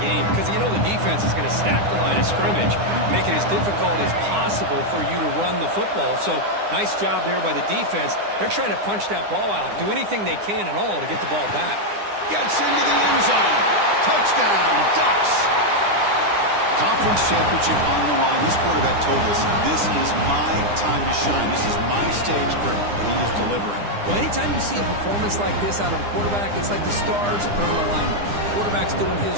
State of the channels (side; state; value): left; late; 9.9 ms